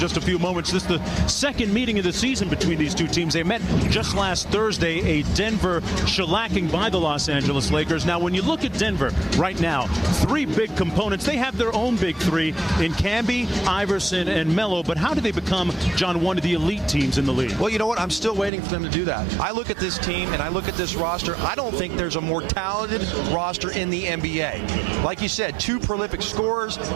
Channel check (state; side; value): drops out; left; at 18.5 s